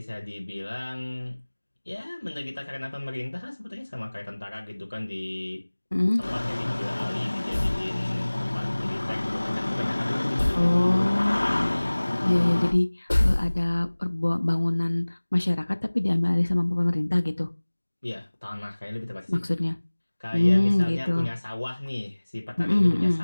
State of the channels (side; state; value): both; inverted; correlation -1.00